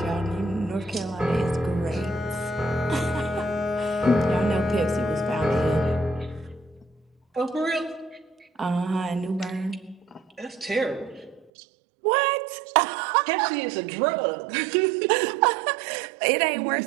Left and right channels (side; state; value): left; drops out; at 11.5 s